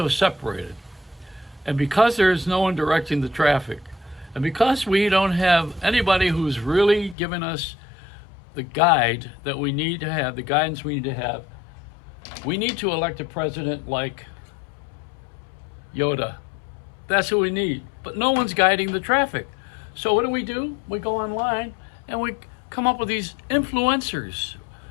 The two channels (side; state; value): right; drops out; at 7.2 s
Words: separated, and because there is no one directing the traffic, and because we don't have anybody who's really giving us the guide that we need to have, the guidance we need to have, we need to elect a president like Yoda. That's who we need. But no one's guiding the traffic. So what do? We go online and we come up with these influencers.